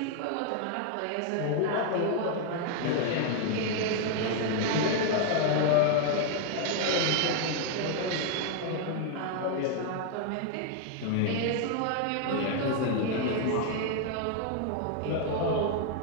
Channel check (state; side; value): different; both; correlation 0.00